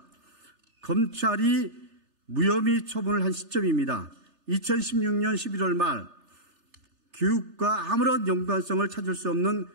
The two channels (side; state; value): left; late; 3.3 ms